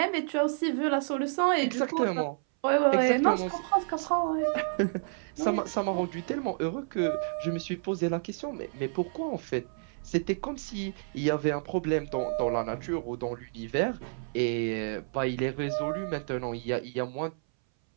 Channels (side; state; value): left; silent; 58 dB below the other